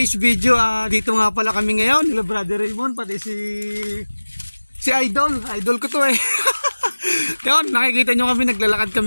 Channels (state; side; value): inverted; both; correlation -1.00